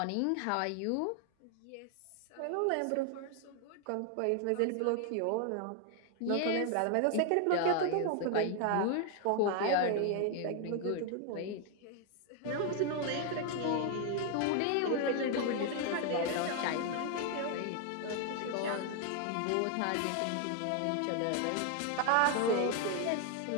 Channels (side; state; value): both; different; correlation 0.00